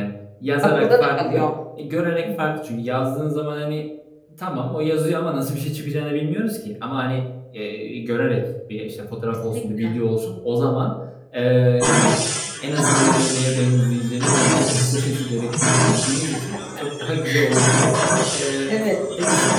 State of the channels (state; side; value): identical; both; correlation 1.00